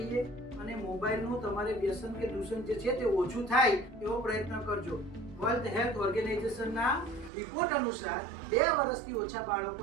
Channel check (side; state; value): left; drops out; at 7.3 s